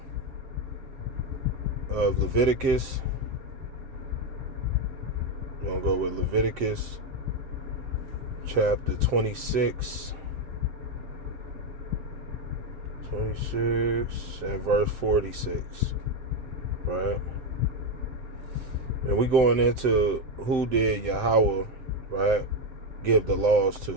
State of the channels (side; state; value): left; late; 7.7 ms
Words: of Leviticus. We're going to go with Leviticus chapter 26 and verse 46, right? And we're going into who did Yahweh, right, give the laws